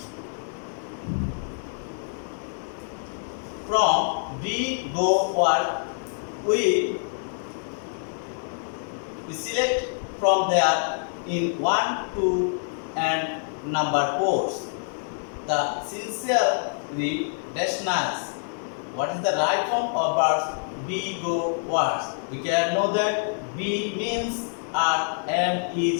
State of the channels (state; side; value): silent; right; digital silence